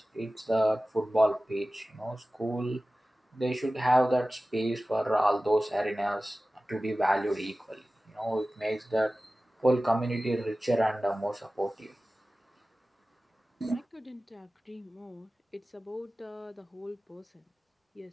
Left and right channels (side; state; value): both; normal; correlation 0.96